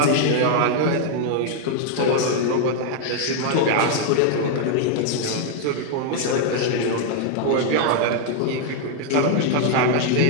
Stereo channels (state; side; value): different; both; correlation 0.00